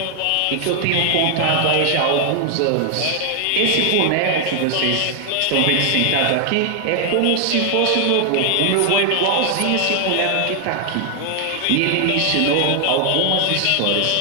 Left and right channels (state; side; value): different; both; correlation 0.00